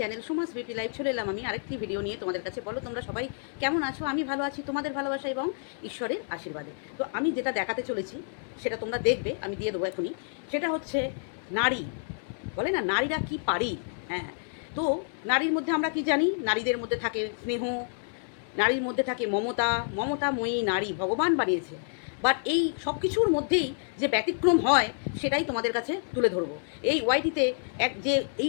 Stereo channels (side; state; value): right; silent; 58 dB below the other